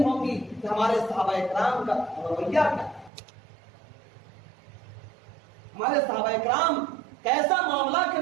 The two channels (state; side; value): drops out; left; at 3.1 s